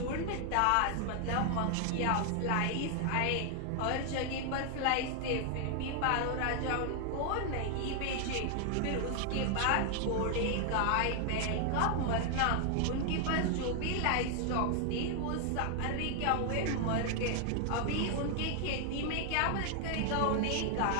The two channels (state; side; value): different; both; correlation 0.00